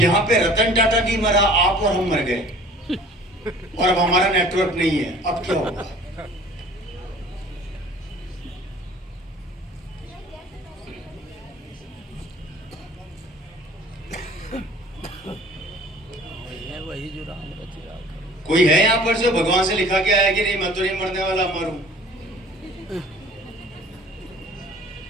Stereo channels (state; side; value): normal; both; correlation 0.48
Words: पे रतन टाटा नहीं मरा, आप और हम मर गए, और अब हमारा नेटवर्क नहीं है। अब क्या होगा? वही जो राम रचिरा। कोई है यहां पर जो भगवान से लिखा के आया कि नहीं मैं तो नहीं मरने वाला, मरूं?